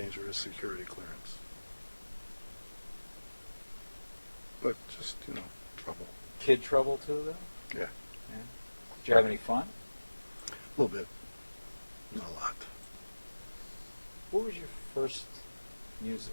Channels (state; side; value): inverted; both; correlation -1.00